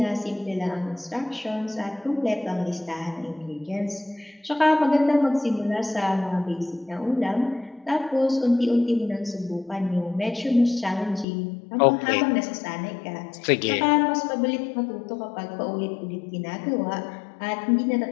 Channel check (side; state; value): right; drops out; at 11.2 s